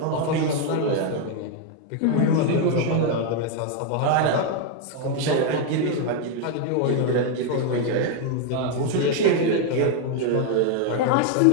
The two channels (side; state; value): both; different; correlation 0.01